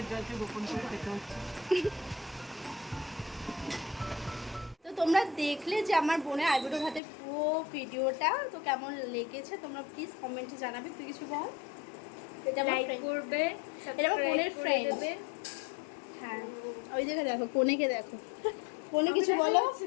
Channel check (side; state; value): right; drops out; at 7.0 s